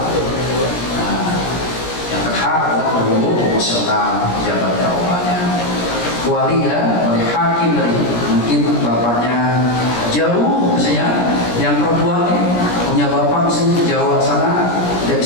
Nah, yang berhak adalah hukum emosional pejabat dakwahnya. Wali ya, oleh hakim tadi, mungkin bapaknya jauh misalnya, yang perempuan punya bapak misalnya di Jawa sana, tidak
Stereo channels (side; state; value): right; late; 17 ms